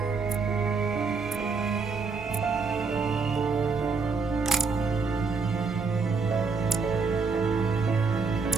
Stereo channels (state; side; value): quieter; left; 4.6 dB